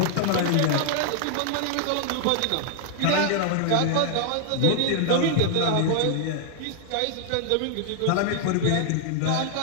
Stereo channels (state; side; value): different; both; correlation 0.00